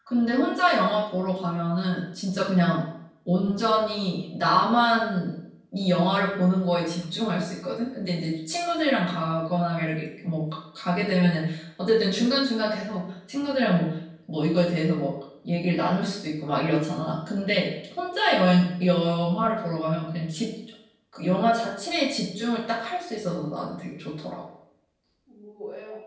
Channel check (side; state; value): both; identical; correlation 1.00